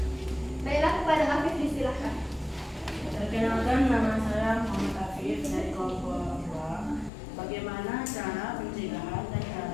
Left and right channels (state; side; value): drops out; right; at 7.1 s